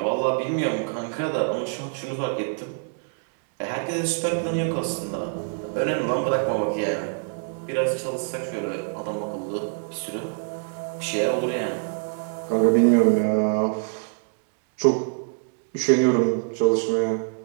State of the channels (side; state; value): left; silent; digital silence